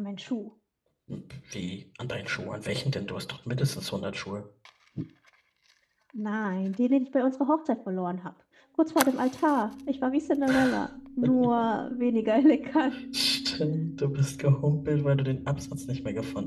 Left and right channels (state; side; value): identical; both; correlation 1.00